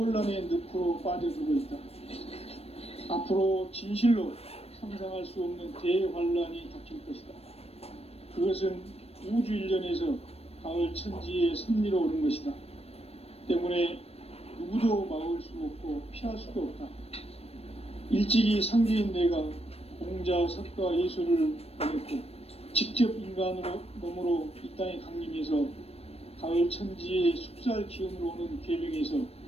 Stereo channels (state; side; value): late; right; 0.29 ms